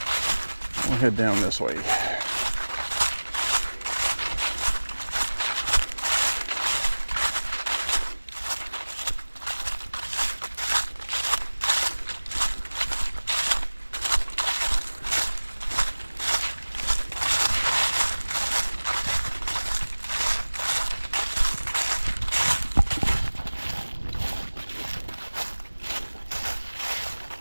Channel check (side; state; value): both; inverted; correlation -1.00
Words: We'll head down this way.